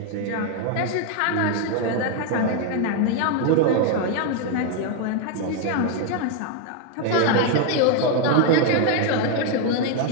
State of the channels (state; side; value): different; both; correlation 0.01